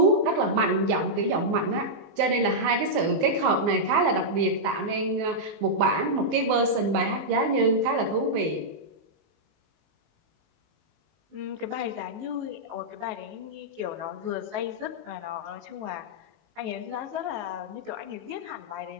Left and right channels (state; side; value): late; left; 19 ms